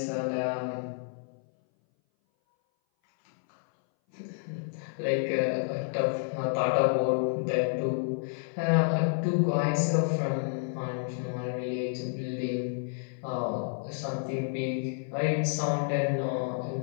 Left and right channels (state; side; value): silent; right; 58 dB below the other